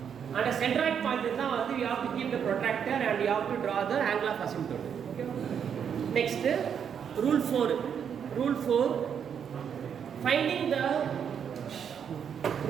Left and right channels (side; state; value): left; quieter; 7.8 dB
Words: and a centroid point is now you have to keep the protractor and you have to draw the angle of asymptote. Okay. Next, rule 4. Rule 4. Finding the